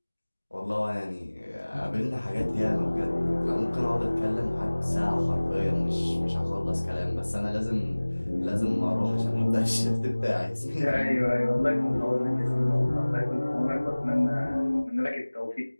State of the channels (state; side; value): inverted; both; correlation -1.00